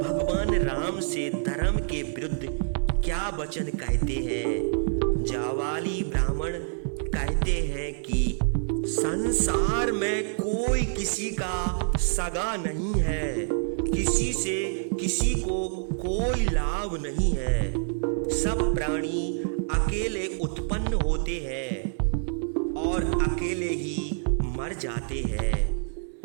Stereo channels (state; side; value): silent; left; digital silence